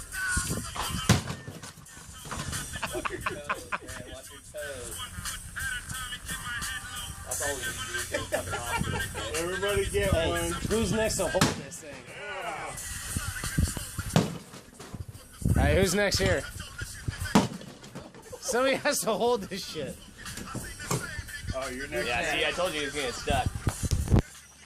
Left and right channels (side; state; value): both; identical; correlation 1.00